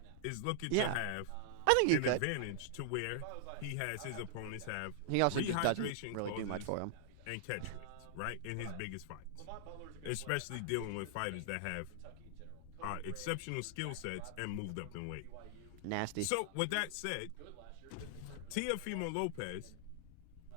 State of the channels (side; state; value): both; different; correlation -0.01